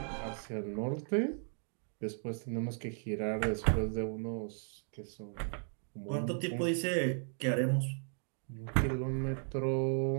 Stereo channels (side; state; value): left; silent; 54 dB below the other